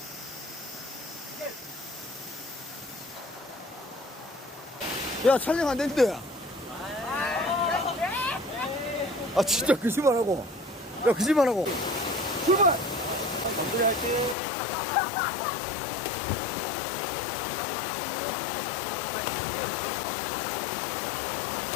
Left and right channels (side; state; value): right; drops out; at 14.4 s